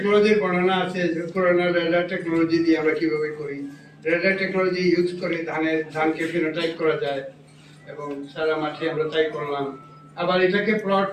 বর্ণনা আছে। পুরোনো রেডার টেকনোলজি দিয়ে আমরা কিভাবে করি, রেডার টেকনোলজি ইউজ করে ধানকে ফিনোটাইপ করা যায় এবং সারা মাঠে আমরা তাই করলাম। আবার এটাকে প্লট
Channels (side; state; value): both; identical; correlation 1.00